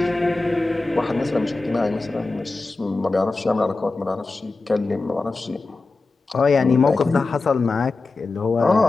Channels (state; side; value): quieter; right; 3.5 dB